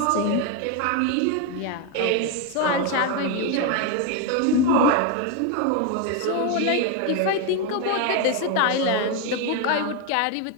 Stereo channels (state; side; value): different; both; correlation 0.02